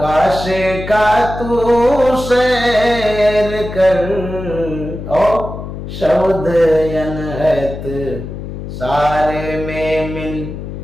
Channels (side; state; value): left; noise; hum, 9 dB below the sound